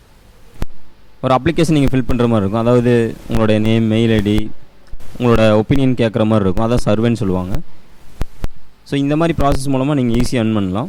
ஒரு அப்ளிகேஷன் நீங்கள் ஃபில் பண்ணுற மாதிரி இருக்கும். அதாவது உங்களோட நேம், மெயில் ஐடி, உங்களோட ஒப்பீனியன் கேட்குற மாதிரி இருக்கும். அதான் சர்வேன்னு சொல்லுவாங்க. ஸோ இந்த மாதிரி ப்ராசஸ் மூலமாக நீங்கள் ஈஸியாக earn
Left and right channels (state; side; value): identical; both; correlation 1.00